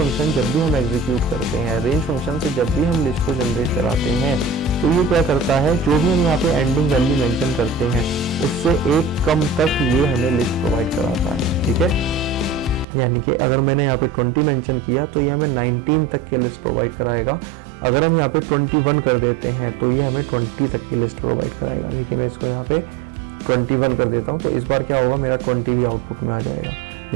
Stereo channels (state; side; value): drops out; left; at 12.9 s